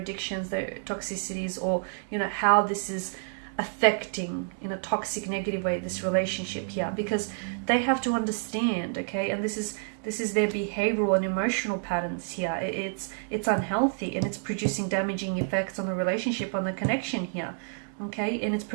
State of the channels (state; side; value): silent; left; digital silence